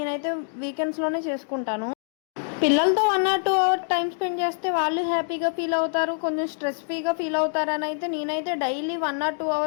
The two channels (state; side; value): silent; right; digital silence